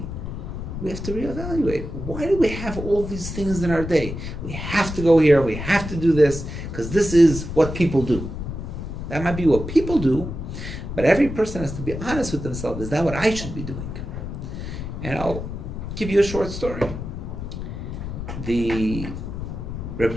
we have to reevaluate. Why do we have all these things in our day? We have to go here, we have to do this, because this is what people do. That might be what people do, but every person has to be honest with themselves. Is that what I should be doing? And I'll give you a short story. The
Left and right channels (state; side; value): noise; left; rumble, 7 dB below the sound